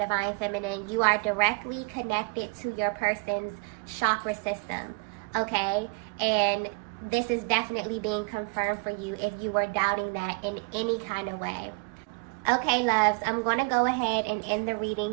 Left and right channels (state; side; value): quieter; left; 32.7 dB